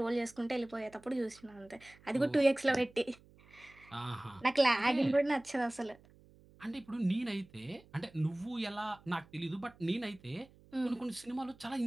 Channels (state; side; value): noise; right; hum, 26 dB below the sound